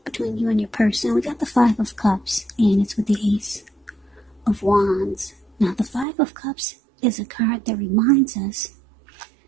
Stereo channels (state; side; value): drops out; left; at 6.1 s